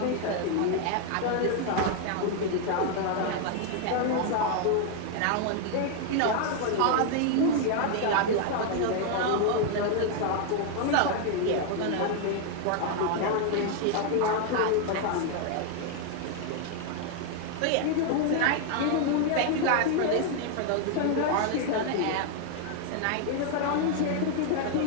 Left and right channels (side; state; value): both; different; correlation 0.00